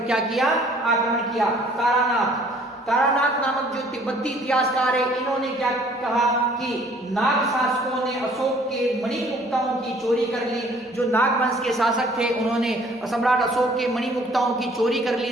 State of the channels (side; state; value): both; normal; correlation 0.57